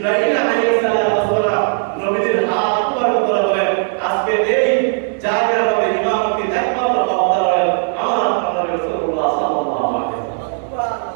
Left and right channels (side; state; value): left; silent; digital silence